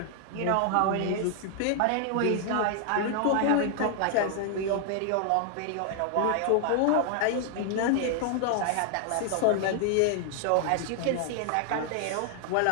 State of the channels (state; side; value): different; both; correlation 0.00